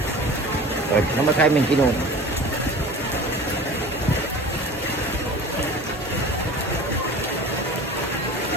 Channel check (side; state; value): both; normal; correlation 0.39